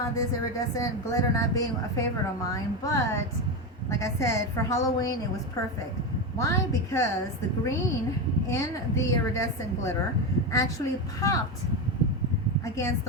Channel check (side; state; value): both; normal; correlation 0.15